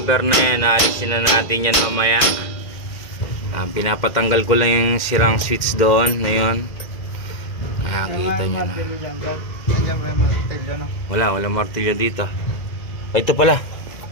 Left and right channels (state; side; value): late; right; 2.0 ms